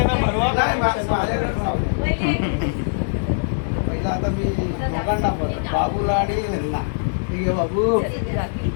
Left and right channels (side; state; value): right; silent; digital silence